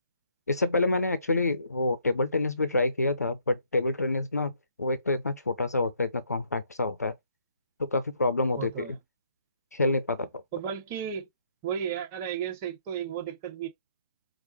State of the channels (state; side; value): inverted; both; correlation -0.68